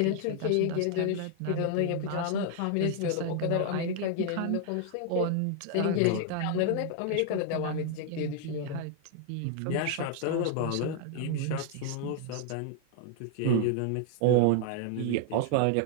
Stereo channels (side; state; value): both; different; correlation 0.00